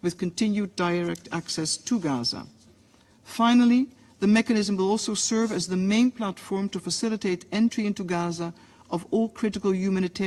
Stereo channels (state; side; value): identical; both; correlation 1.00